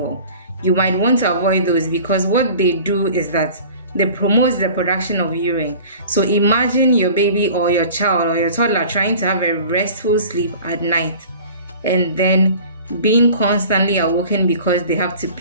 You might want to avoid those because what they do is that they promote the production of urine. So imagine your baby or your child or your toddler trying to have a restful sleep at night and then being constantly awoken because they have to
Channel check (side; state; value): both; inverted; correlation -0.44